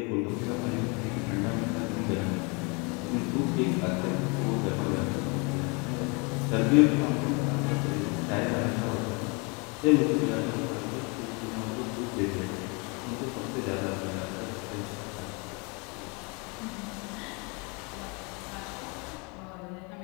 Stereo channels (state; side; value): quieter; right; 30.8 dB